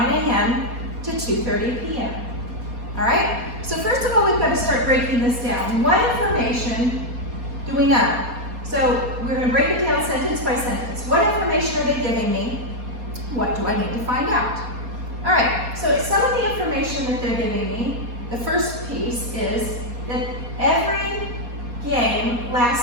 a.m. to 2:30 p.m.? All right, so first of all, we've got to start breaking this down. What information do we know? So we're going to break it down sentence by sentence. What information are they giving me? What do I need to find out? All right, so some of the information that they're giving me, the first piece is that every game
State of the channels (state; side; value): late; left; 4.2 ms